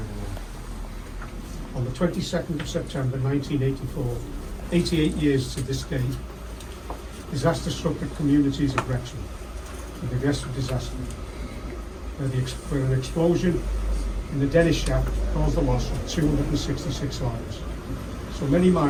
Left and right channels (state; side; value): identical; both; correlation 1.00